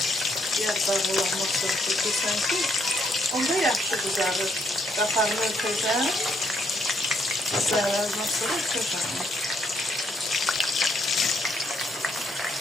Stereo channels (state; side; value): normal; both; correlation 0.73